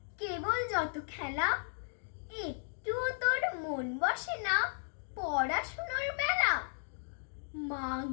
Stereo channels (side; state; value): right; silent; digital silence